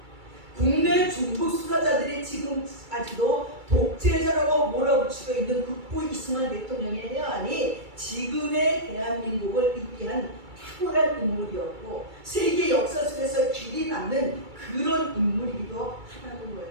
국내 중국 수사자들이 지금까지도 독재자라고 몰아붙이고 있는 국부 이승만 대통령의 해안이 지금의 대한민국을 이끌한 탁월한 인물이었고 세계 역사 속에서 길이 남는 그런 인물이기도 하다는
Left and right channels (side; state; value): left; late; 2.3 ms